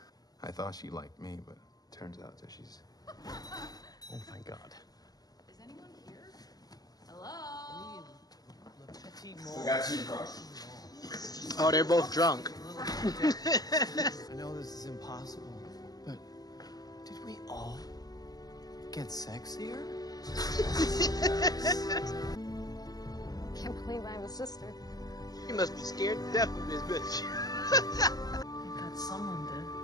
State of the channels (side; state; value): right; late; 0.19 ms